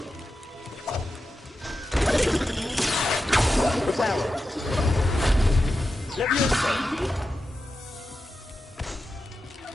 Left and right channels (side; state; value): both; normal; correlation 0.90